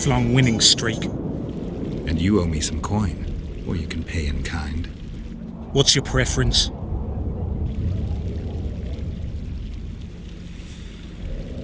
winning streak. And you owe me some coin, or you can pay in kind. What's your preference?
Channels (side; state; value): both; identical; correlation 1.00